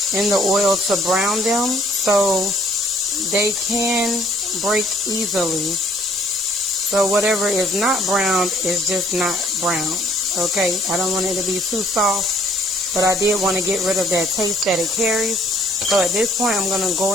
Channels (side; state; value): both; normal; correlation 0.60